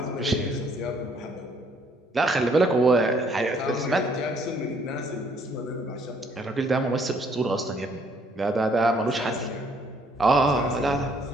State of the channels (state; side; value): normal; both; correlation 0.65